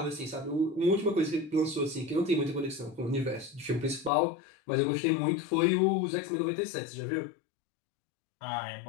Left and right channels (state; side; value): drops out; right; at 4.1 s